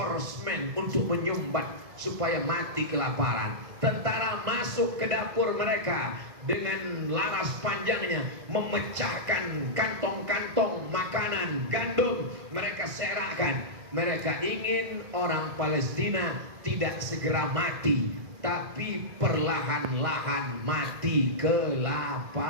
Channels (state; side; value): late; left; 1.6 ms